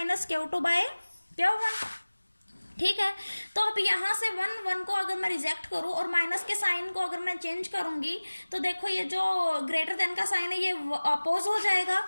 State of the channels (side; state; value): both; inverted; correlation -1.00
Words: - Q2/Q1, ठीक है। तो अब यहाँ से 1 को अगर मैं रिजेक्ट करूँ और माइनस के साइन को अगर मैं चेंज करूंगी तो देखो ये जो ग्रेटर देन का साइन है ये अपोज हो जाएगा।